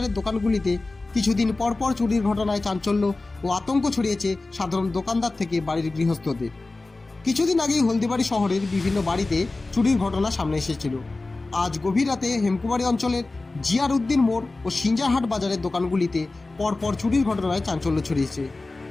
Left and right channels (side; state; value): right; quieter; 3.3 dB